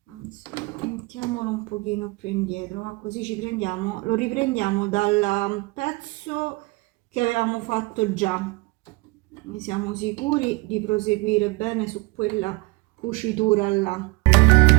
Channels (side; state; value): left; quieter; 25.1 dB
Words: anzi mettiamolo un pochino più indietro, ma così ci prendiamo, lo riprendiamo dal pezzo che avevamo fatto già, quindi siamo sicuri di proseguire bene su quella cucitura là.